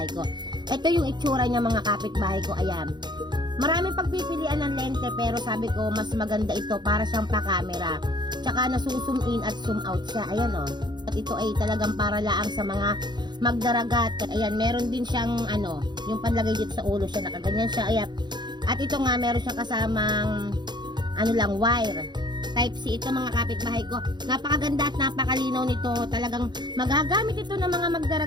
ko. Ito yung itsura niya mga kapitbahay ko, ayan. Maraming pagpipilian ng lente pero sabi ko mas maganda ito para siyang pa-camera. Tsaka nasuzoom in at zoom out siya, ayan o. At ito ay talagang para laang sa mga magdaragat. Ayan, meron din siyang yung panlagay dito sa ulo siya, nakaganyan siya, ayan. At ito nga meron siyang kasamang wire. Type C ito mga kapitbahay ko. Napakaganda at napakalinaw nito. Talagang magagamit ito ng mga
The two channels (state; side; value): late; left; 0.21 ms